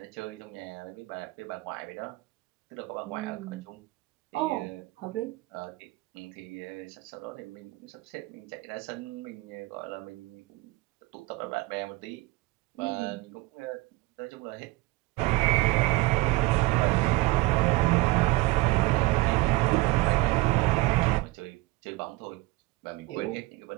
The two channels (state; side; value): quieter; left; 21.1 dB